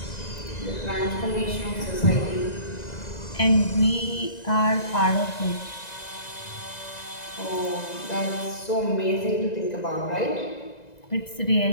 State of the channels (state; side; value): late; right; 2.0 ms